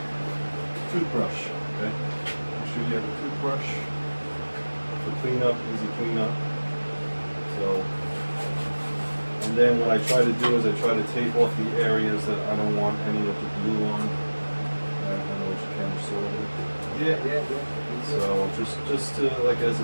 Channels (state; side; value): inverted; both; correlation -1.00